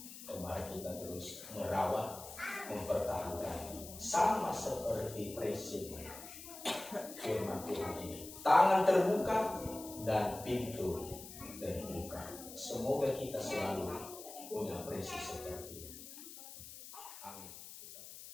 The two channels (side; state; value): left; noise; hiss, 13 dB below the sound